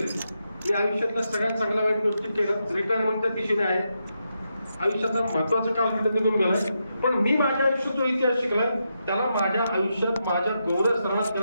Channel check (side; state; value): both; inverted; correlation -0.84